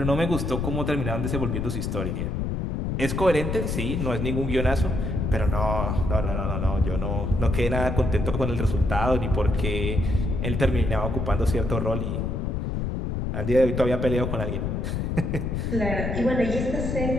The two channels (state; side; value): noise; left; rumble, 1 dB below the sound